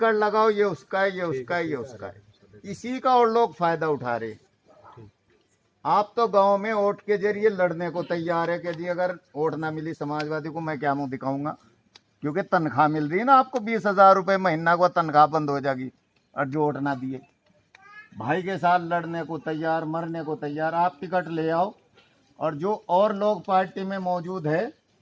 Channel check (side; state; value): both; identical; correlation 1.00